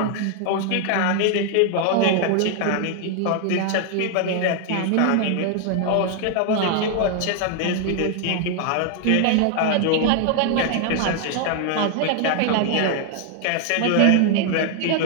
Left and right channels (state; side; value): different; both; correlation 0.00